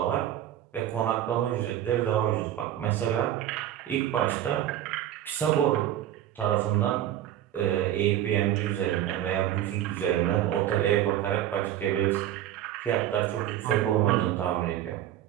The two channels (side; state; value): left; quieter; 12.0 dB